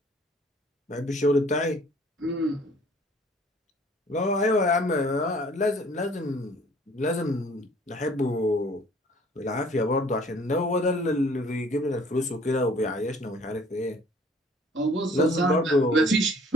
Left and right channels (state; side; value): normal; both; correlation 0.55